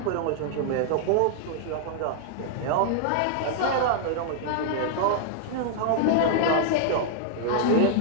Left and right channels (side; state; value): both; different; correlation -0.01